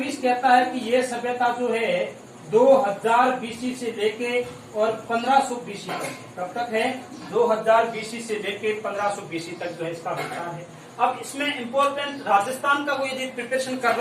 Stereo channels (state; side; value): identical; both; correlation 1.00